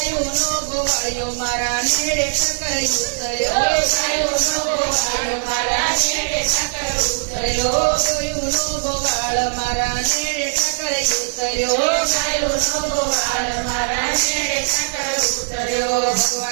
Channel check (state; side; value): silent; left; 66 dB below the other